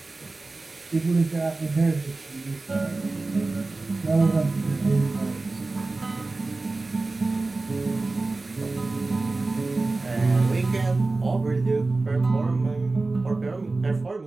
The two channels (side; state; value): left; quieter; 3.4 dB